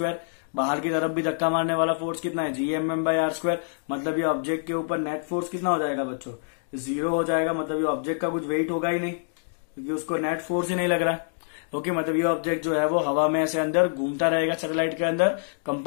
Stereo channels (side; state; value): right; silent; digital silence